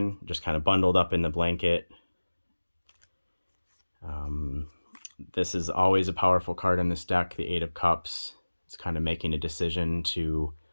just kind of bundled up in the blanket. This is always a powerful card in this deck, the Eight of Cups. It's kind of making a decision to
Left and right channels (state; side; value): inverted; both; correlation -1.00